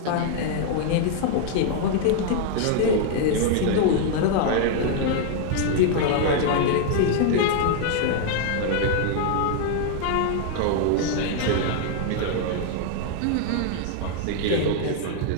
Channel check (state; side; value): different; both; correlation 0.00